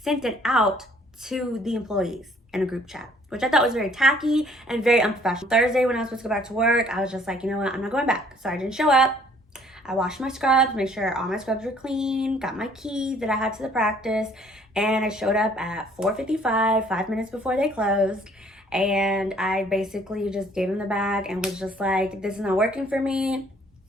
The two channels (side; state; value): both; normal; correlation 0.59